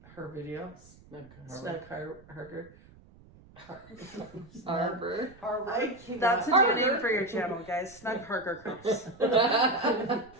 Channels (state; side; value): noise; right; rumble, 24 dB below the sound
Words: her video. Snug Harker. Arbor. I cannot. That's a new Harker. name for your channel, guys. Snug Harker Cups.